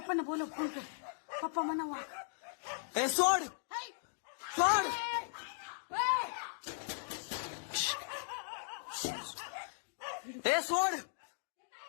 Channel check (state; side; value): silent; right; digital silence